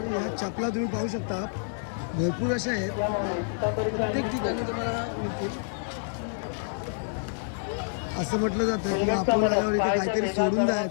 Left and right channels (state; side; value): silent; right; 59 dB below the other